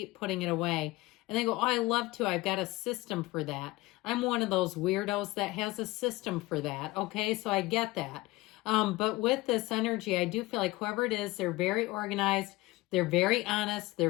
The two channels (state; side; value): quieter; right; 20.2 dB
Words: putting it away. And they go, oh, I love to. I've got a system for that. I'm one of those weirdos that has a system for that. Okay, so I get that. But with this energy, I do feel like whoever it is, they're very organized, they're very honest, they're